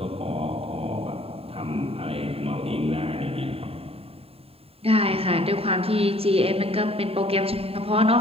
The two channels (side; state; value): left; late; 0.28 ms